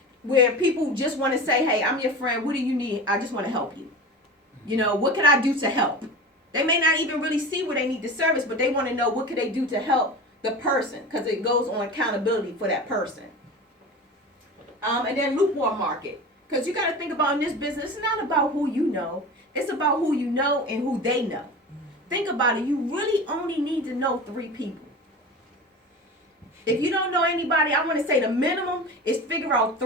where people just want to say, hey, I'm your friend. What do you need? I just want to help you. You know, what can I do to help? They may not even really see where they need the service, but they want to know what can they do to help the person, because it goes on accountability for that person. And then lukewarm market. Because you got to think about in this business, it's not about who you know. It's about who you know and who they know. Think about it. You really only need to know 3 people. If you don't know anybody, I want to say the minimum is figure out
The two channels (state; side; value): normal; both; correlation 0.32